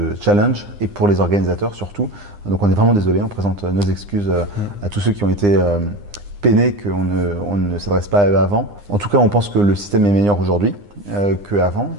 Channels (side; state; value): left; late; 9.8 ms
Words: challenge et pour les organisateurs surtout. Donc on est vraiment désolé, on présente nos excuses à tous ceux qui ont été peinés qu'on ne s'adresse pas à eux avant. En tout cas on pense que le système est meilleur aujourd'hui qu'avant.